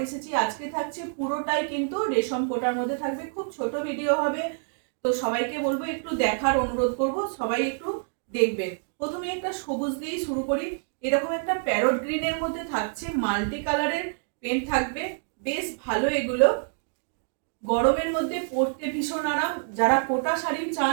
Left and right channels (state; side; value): silent; left; digital silence